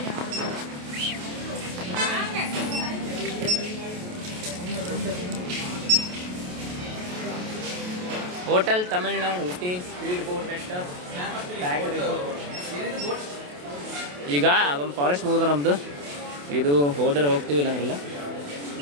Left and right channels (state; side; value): late; left; 28 ms